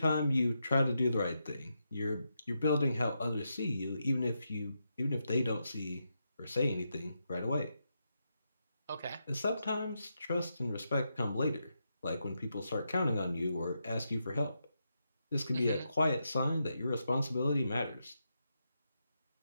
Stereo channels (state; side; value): inverted; both; correlation -0.84